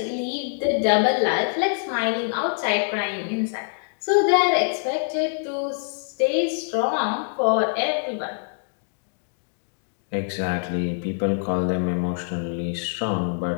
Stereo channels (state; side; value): silent; right; digital silence